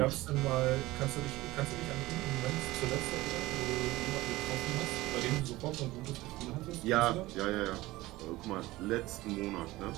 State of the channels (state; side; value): quieter; left; 18.6 dB